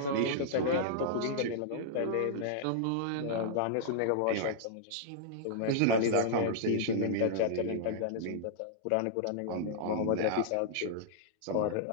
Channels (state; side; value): different; both; correlation -0.02